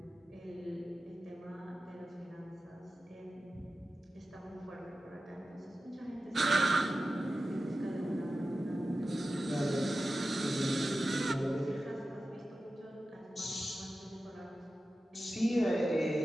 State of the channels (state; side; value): normal; both; correlation 0.94